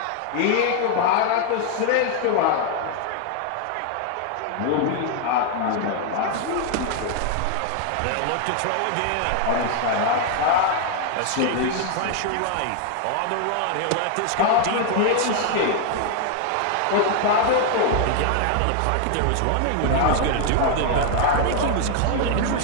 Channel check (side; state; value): both; different; correlation 0.00